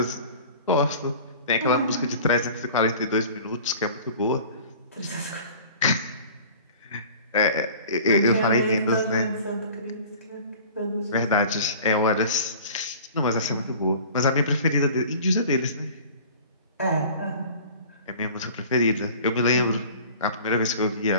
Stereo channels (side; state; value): both; inverted; correlation -0.44